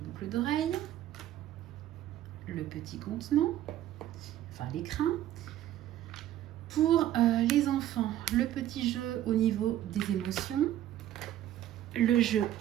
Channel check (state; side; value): quieter; left; 12.6 dB